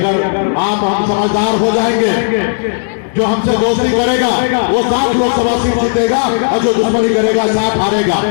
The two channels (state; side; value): silent; right; digital silence